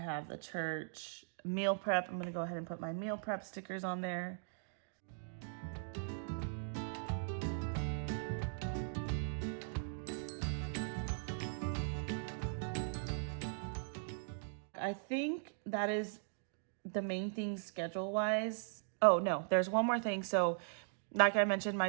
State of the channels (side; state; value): left; silent; digital silence